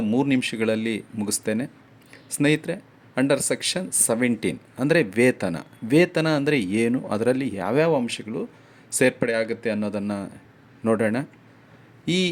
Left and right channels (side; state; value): both; identical; correlation 1.00